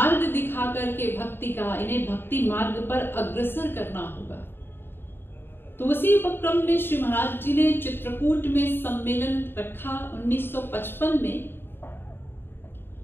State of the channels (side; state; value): right; late; 0.10 ms